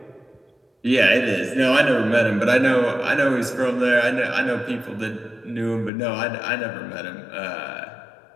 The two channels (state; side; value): drops out; right; at 5.9 s